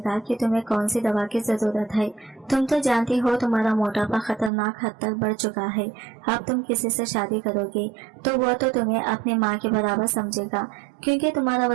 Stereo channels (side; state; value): left; drops out; at 4.5 s